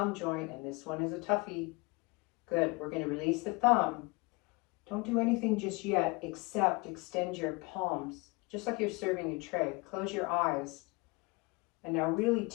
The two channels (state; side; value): quieter; right; 26.5 dB